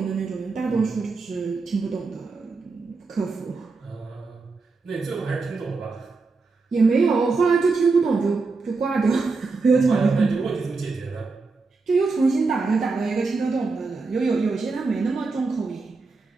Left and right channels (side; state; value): left; quieter; 4.1 dB